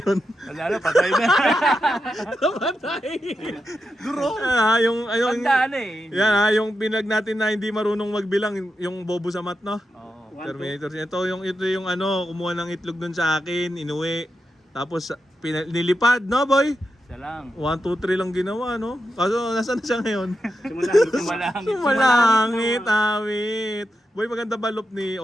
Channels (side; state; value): both; normal; correlation 0.87